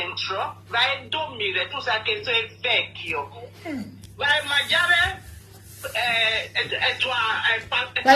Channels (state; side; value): identical; both; correlation 1.00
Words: vai a dormire, tu sai che sei vecchio. Vai a mangiare